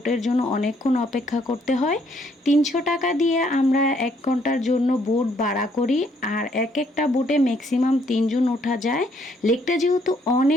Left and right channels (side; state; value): both; normal; correlation 0.68